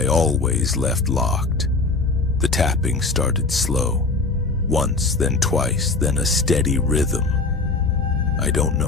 always left locked. The tapping started slow. Once, then twice, then a steady rhythm. I don't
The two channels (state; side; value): quieter; right; 3.7 dB